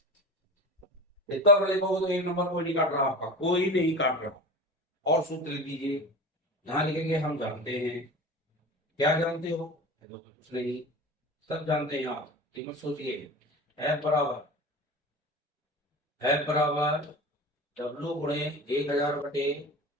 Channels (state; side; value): normal; both; correlation 0.32